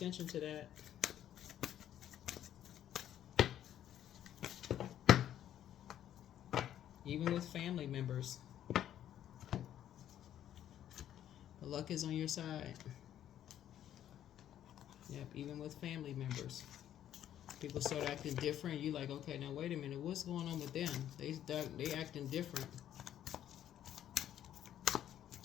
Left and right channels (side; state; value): right; quieter; 11.0 dB